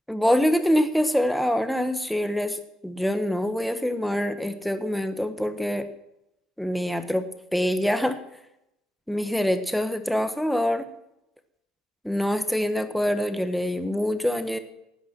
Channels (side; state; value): both; normal; correlation 0.93